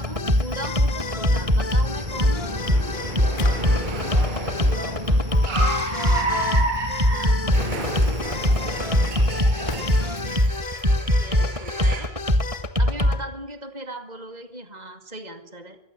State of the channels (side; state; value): left; late; 1.6 ms